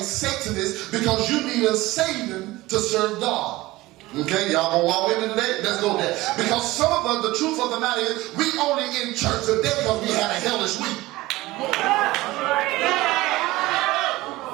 Satanist because you need a Satan to serve God. Okay, y'all gonna walk with me today? Let's go there. Because some of us, the truth of the matter is, we only in church today because we had a hellish week.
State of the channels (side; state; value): left; quieter; 18.9 dB